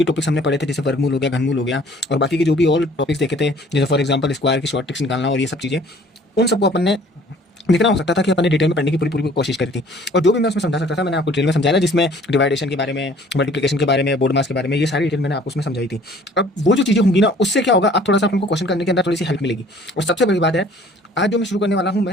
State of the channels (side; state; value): both; normal; correlation 0.54